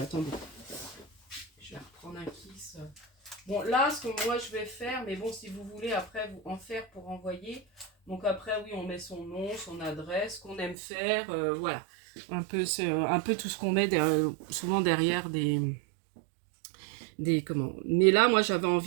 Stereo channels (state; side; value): drops out; left; at 10.8 s